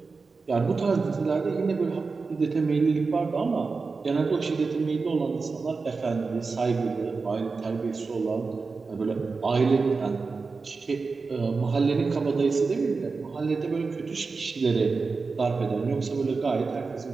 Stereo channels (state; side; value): quieter; left; 4.4 dB